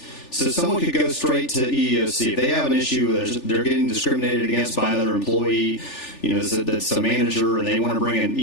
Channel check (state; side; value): late; right; 3.4 ms